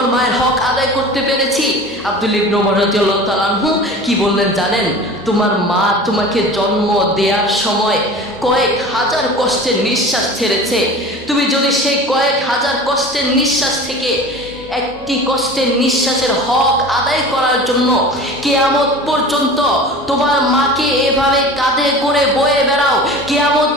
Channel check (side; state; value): both; normal; correlation 0.38